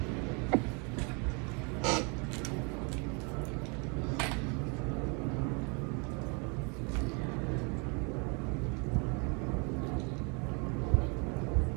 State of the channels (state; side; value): quieter; left; 33.4 dB